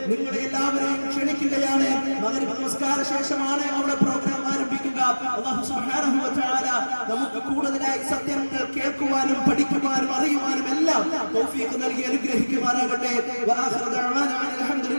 നിങ്ങളെ എല്ലാവരെയും ക്ഷണിക്കുകയാണ്. മഗ്‌രിബ് നമസ്കാര ശേഷമാണ് അവിടെ പ്രോഗ്രാം ആരംഭിക്കുക. അല്ലാഹു സുബ്ഹാനഹു വ തആല നമുക്ക് കൂടുതലായി സത്യങ്ങൾ കേൾക്കുവാനും പഠിക്കുവാനും അറിയുവാനും എല്ലാം തൗഫീഖ് നൽകി അനുഗ്രഹിക്കുമാറാകട്ടെ. വആഖിറു ദഅവാനാ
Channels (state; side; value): inverted; both; correlation -1.00